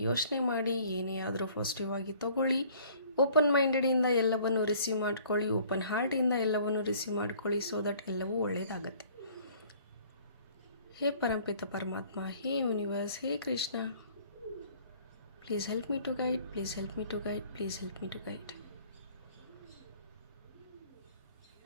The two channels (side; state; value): both; inverted; correlation -0.54